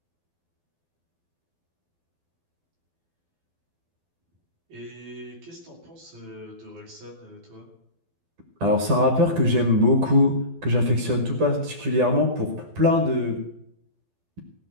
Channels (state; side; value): late; left; 12 ms